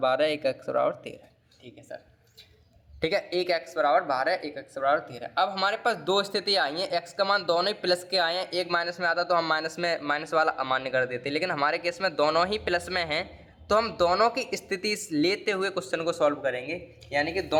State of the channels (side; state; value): both; identical; correlation 1.00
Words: एक x बराबर 13, ठीक है सर, ठीक है। एक x बराबर 12, एक x बराबर 13। अब हमारे पास दो स्थिति आई हैं, x का मान दोनों ही प्लस के आए हैं, एक माइनस में आता तो हम माइनस वाला अमान्य कर देते, लेकिन हमारे केस में दोनों ही प्लस में हैं, तो हम दोनों की स्थिति लेते हुए क्वेश्चन को सॉल्व करेंगे, यानी कि